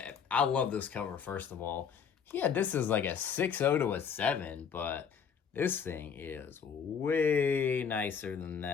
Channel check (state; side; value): quieter; right; 6.9 dB